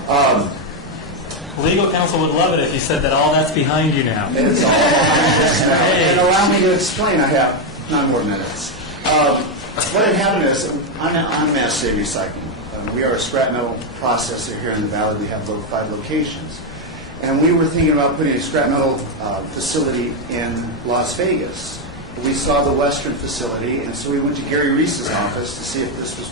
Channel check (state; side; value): normal; both; correlation 0.04